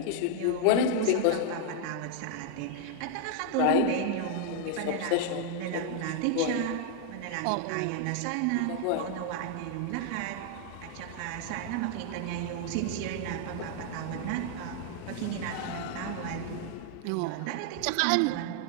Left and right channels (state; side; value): different; both; correlation 0.00